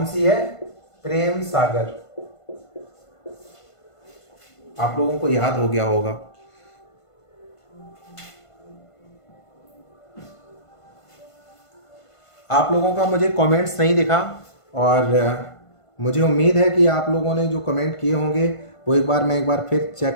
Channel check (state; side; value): late; right; 1.5 ms